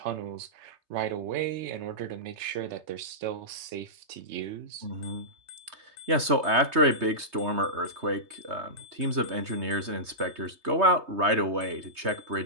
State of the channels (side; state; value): left; late; 3.2 ms